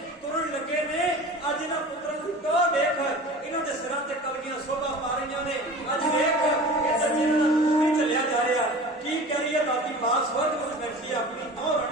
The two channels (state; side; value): normal; both; correlation 0.38